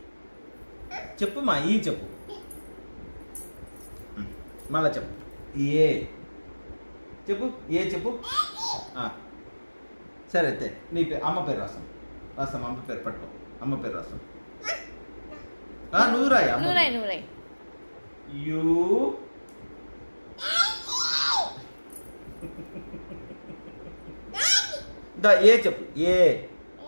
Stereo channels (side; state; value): both; inverted; correlation -1.00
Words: చెప్పు మా చెప్పు మళ్ళా చెప్పు చెప్పు చెప్పు సరే అయితే నీ పేరు అమ్మ పేరు రాస్తాం అమ్మ పేరు పట్టుకో అమ్మ పేరు రాస్తాం నువ్వు రాయి యూ చెప్పు